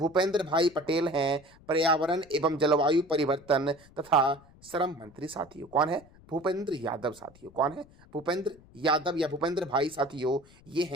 भाई पटेल हैं पर्यावरण एवं जलवायु परिवर्तन तथा श्रम मंत्री साथियों। कौन है? भूपेंद्र यादव साथियों। कौन है? भूपेंद्र यादव या भूपेंद्र भाई साथियों, ये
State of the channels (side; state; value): left; noise; rumble, 25 dB below the sound